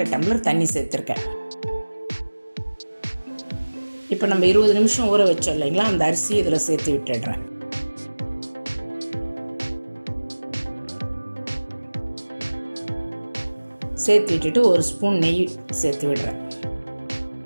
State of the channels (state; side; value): inverted; both; correlation -1.00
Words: டம்ளர் தண்ணி சேர்த்துருக்கேன். இப்போ நம்ம 20 நிமிஷம் ஊற வச்சோம் இல்லைங்களா, அந்த அரிசி இதில் சேர்த்து விட்டுடுறேன். சேர்த்து விட்டுட்டு 1 ஸ்பூன் நெய் சேர்த்து விடுறேன்.